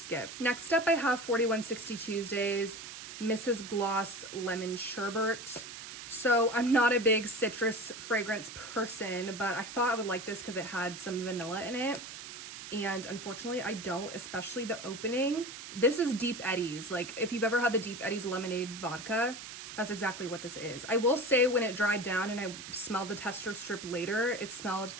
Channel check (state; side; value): noise; right; hiss, 11 dB below the sound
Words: Next up, I have 4160 Tuesdays Mrs. Gloss Lemon Sherbet. So I'm not a big citrus fragrance person, but I thought I would like this because it had some vanilla in it. And unfortunately, I don't, especially the opening. This is Deep Eddies. Like, if you've ever had the Deep Eddies lemonade vodka, that's exactly what this is. I will say when it dried down and I smelled the tester strip later, it smelled